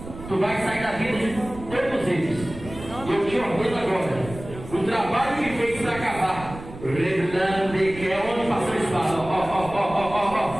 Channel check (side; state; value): right; noise; rumble, 14 dB below the sound